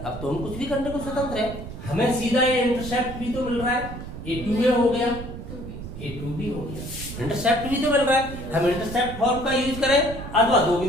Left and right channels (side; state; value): right; noise; rumble, 10 dB below the sound